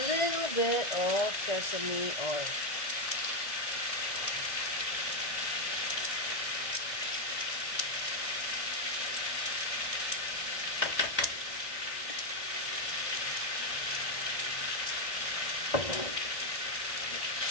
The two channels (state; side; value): late; right; 1.6 ms